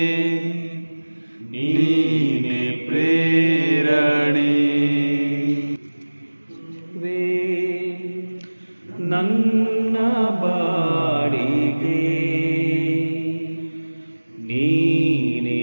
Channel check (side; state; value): both; inverted; correlation -1.00